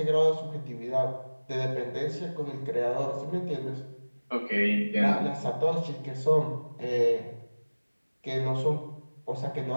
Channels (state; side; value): inverted; both; correlation -1.00